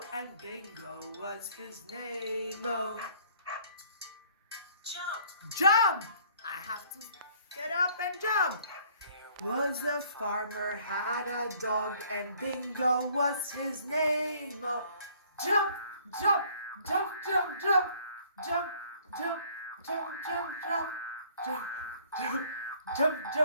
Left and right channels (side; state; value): both; inverted; correlation -0.58